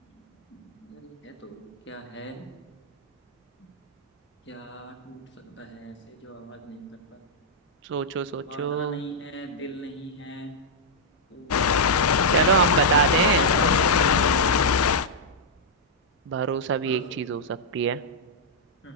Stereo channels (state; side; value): normal; both; correlation -0.06